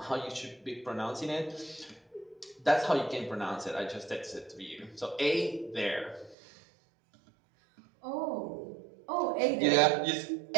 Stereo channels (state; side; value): drops out; left; at 6.4 s